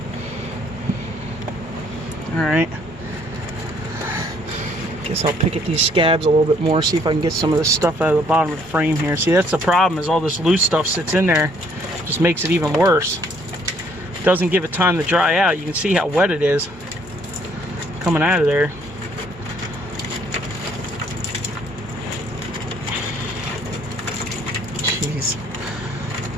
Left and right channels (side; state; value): both; normal; correlation 0.64